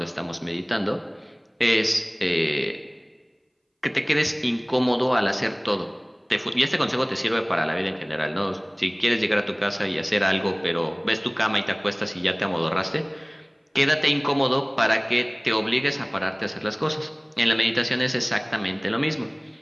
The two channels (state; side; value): identical; both; correlation 1.00